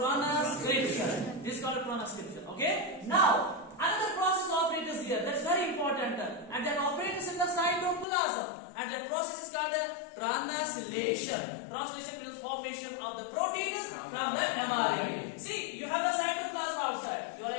This is called transcription. Okay. Now, another process operates here. That's very important, and that operates in the cytoplasm, and that process is called translation. Translation means formation of the proteins from the mRNA. See, you have the cytoplasm outside. You are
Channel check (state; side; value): drops out; right; at 8.1 s